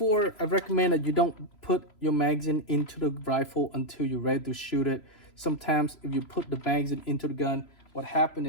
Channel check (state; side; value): late; right; 3.0 ms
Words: I recommend that you don't put your magazine into the rifle until you're ready to shoot it. Sometimes if you put the magazine into the gun, what happens